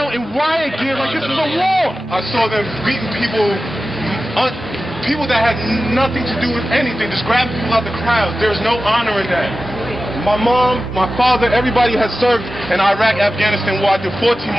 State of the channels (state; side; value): normal; both; correlation 0.94